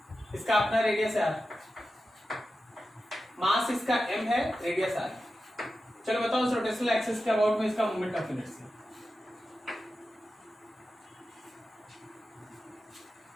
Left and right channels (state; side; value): normal; both; correlation 0.92